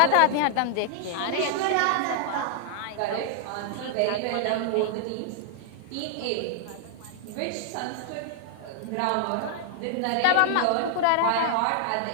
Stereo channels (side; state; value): both; different; correlation 0.00